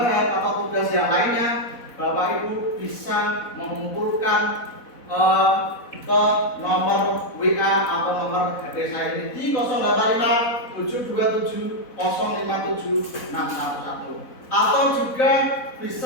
atau tugas yang lainnya, Bapak Ibu bisa mengumpulkan ke nomor WA atau nomor HP saya ini di 085 727 057 611, atau juga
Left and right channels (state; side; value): late; right; 4.1 ms